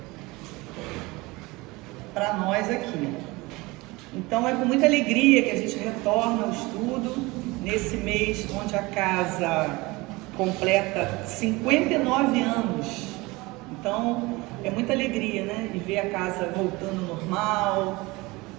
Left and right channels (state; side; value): quieter; left; 22.8 dB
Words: para nós aqui. Então é com muita alegria que a gente retorna ao estudo nesse mês onde a casa completa 59 anos. Então é muita alegria, né, e ver a casa voltando ao normal,